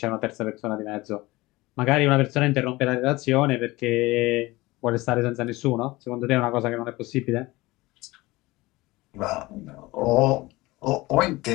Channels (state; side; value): quieter; right; 20.6 dB